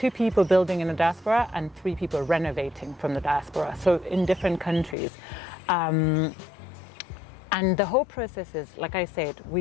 people building in the diaspora and 3 people renovating from the diaspora, so in different countries. And the whole process is, like I said,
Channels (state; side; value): drops out; right; at 5.0 s